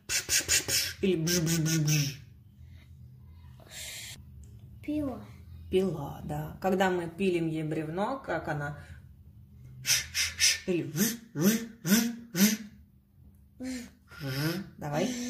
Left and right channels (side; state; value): both; identical; correlation 1.00